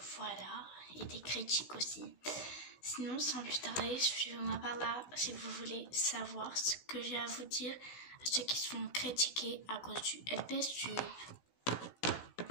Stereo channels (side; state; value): right; late; 16 ms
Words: voilà, et des critiques aussi. Sinon, sans plus tarder, suivez-moi par là si vous voulez savoir ce que j'ai à vous dire à ceux qui se font critiquer à cause du LPS Tube.